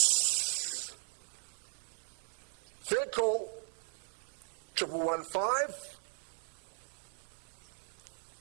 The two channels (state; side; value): silent; left; 53 dB below the other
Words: Third call. 1,115.